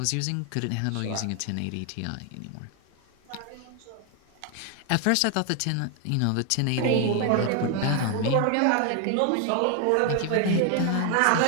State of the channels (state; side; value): different; both; correlation 0.00